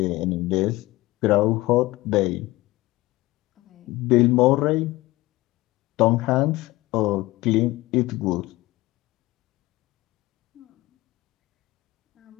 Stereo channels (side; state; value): right; quieter; 19.4 dB